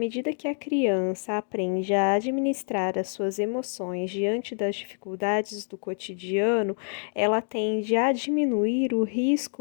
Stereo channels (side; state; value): right; silent; 60 dB below the other